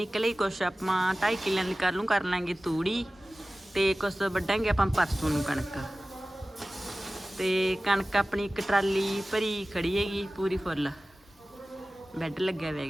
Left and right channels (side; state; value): both; normal; correlation 0.97